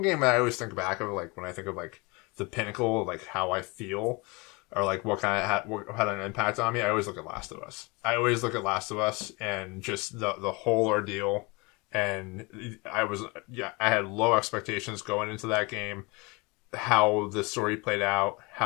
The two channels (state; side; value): quieter; right; 27.0 dB